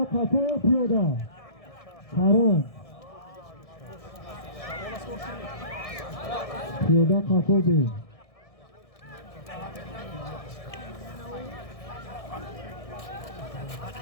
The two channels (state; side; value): late; right; 1.6 ms